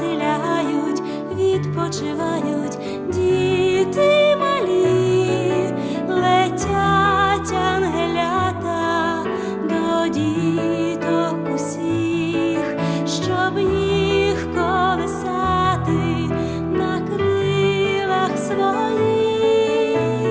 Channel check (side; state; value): both; identical; correlation 1.00